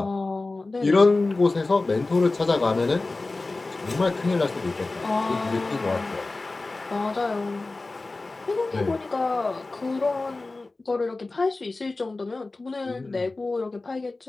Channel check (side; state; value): right; quieter; 3.3 dB